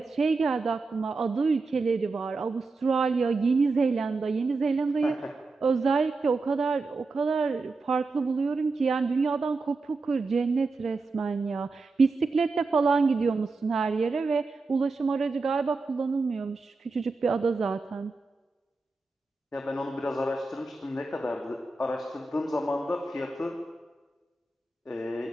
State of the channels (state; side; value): quieter; left; 3.8 dB